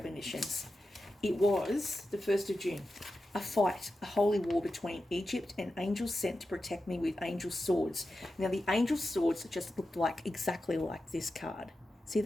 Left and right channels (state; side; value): normal; both; correlation 0.91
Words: It was the 1st of June. a fight, a holy war between Egypt and angels sent to protect me with angel swords. Now, the angel swords just looked like exactly like this card. See